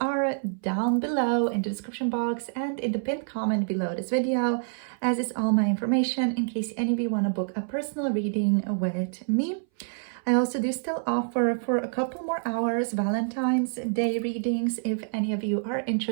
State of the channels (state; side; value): silent; left; 59 dB below the other